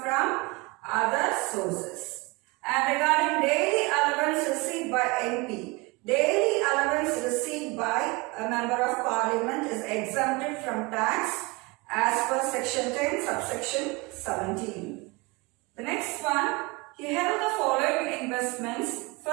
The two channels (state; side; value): quieter; left; 25.9 dB